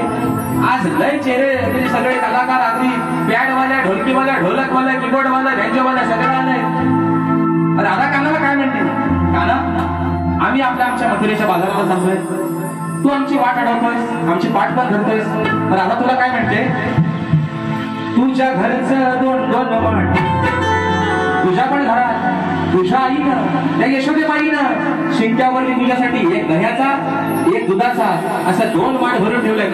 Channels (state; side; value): identical; both; correlation 1.00